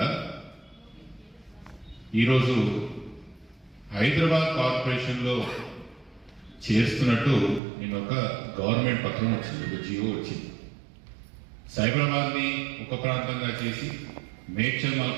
ఈరోజు హైదరాబాద్ కార్పొరేషన్లో చేస్తున్నట్టు నేను ఒక గవర్నమెంట్ పత్రం వచ్చింది, ఒక జియో వచ్చింది. సైబరాబాద్ని ఒక ప్రాంతంగా చేసి, మేడ్చల్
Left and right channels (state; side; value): drops out; left; at 7.6 s